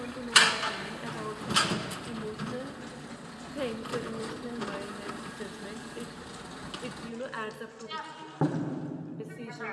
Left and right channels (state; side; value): identical; both; correlation 1.00